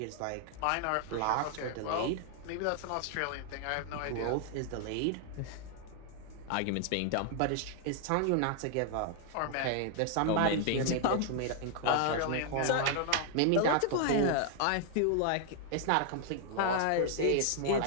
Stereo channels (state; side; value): different; both; correlation 0.00